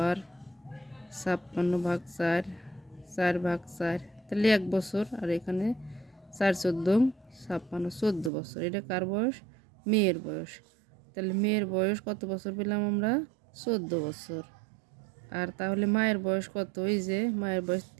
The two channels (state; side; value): drops out; left; at 8.3 s